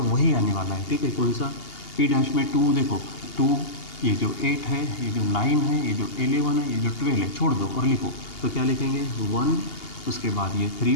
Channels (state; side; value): late; right; 2.8 ms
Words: वही आने वाला है, ठीक है। कौन सा, P डैश में 2, देखो 2, ये जो 8 है, ये जो 9 है, ये जो 11 है, ये जो 12 है, छोड़ दो और लिखो, तो क्या लिखेंगे 1, उसके बाद ये 3